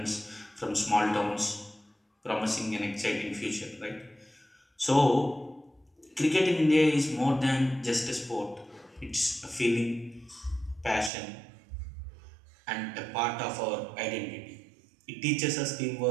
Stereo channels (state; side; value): drops out; left; at 11.1 s